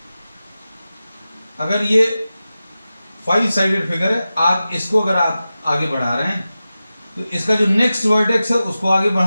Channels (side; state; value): both; inverted; correlation -0.94